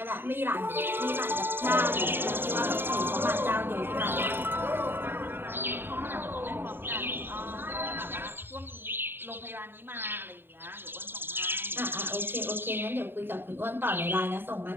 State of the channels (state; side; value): late; left; 0.10 ms